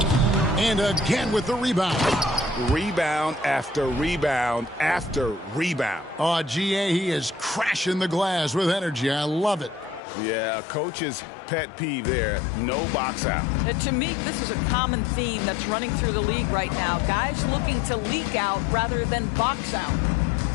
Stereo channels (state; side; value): drops out; right; at 10.0 s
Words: And again with the rebound. Rebound after rebound after rebound. Oh, GA, he is crashing the glass with energy. I love it. Yeah, a coach's pet peeve there. No box out. To me, this is a common theme that's running through the league right now. Guys looking to leak out rather than box out.